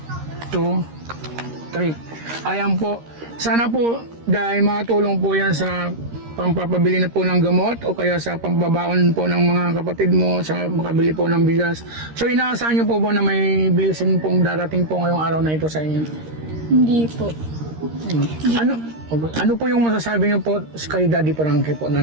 2, 3. Ayan po, Sana po dahil makatulong po yan sa pampapabili na po ng gamot o kaya sa pambabaon po ng mga kapatid mo sa makabili po ng bigas. So inaasahan niyo po ba na may blessing pong darating po ngayong araw na ito sa inyo? Hindi po. Ano po yung masasabi niyo po kay Daddy Frankie po na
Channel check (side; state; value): left; late; 13 ms